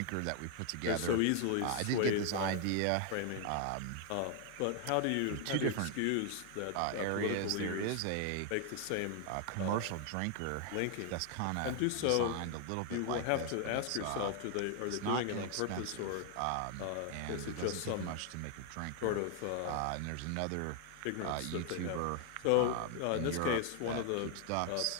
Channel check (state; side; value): different; both; correlation 0.00